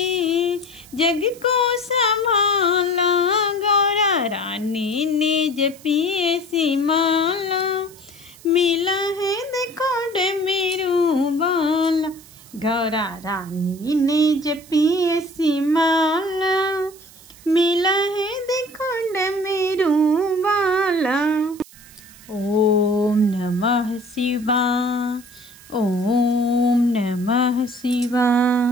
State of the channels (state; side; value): noise; right; hiss, 22 dB below the sound